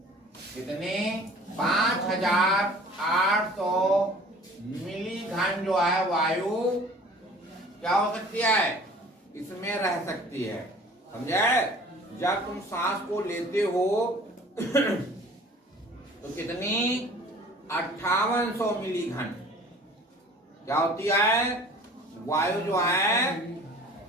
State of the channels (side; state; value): both; normal; correlation 0.48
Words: कितने? 5800 मिली घन जो है वायु क्या हो सकती है? इसमें रह सकती है। समझे? जब तुम सांस को लेते हो तो कितनी? 5800 मिली घन क्या होती है? वायु जो है